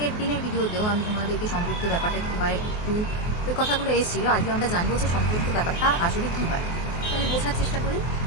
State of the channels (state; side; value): late; right; 24 ms